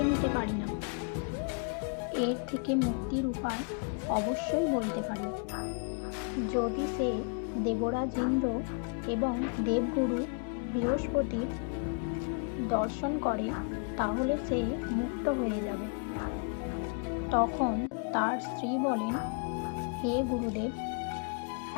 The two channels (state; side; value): quieter; right; 37.6 dB